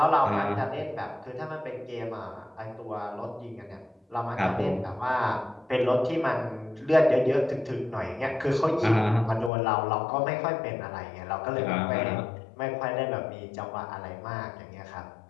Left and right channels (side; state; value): right; drops out; at 9.5 s